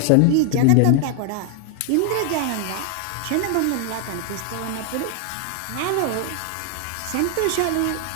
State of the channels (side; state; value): both; different; correlation 0.00